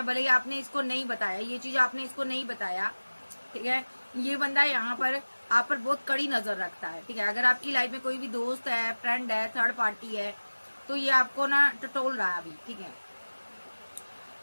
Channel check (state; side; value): inverted; both; correlation -1.00